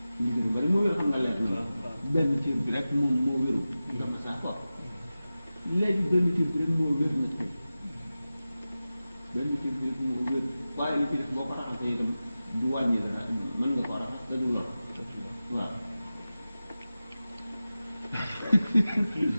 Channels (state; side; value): inverted; both; correlation -0.95